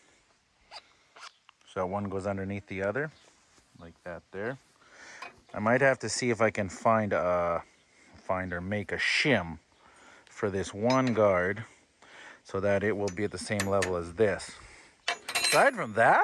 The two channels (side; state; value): both; identical; correlation 1.00